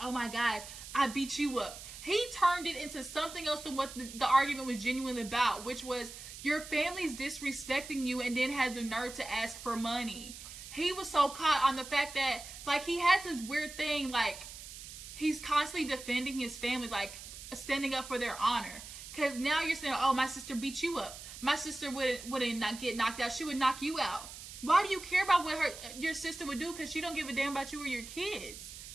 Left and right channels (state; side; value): noise; right; hiss, 13 dB below the sound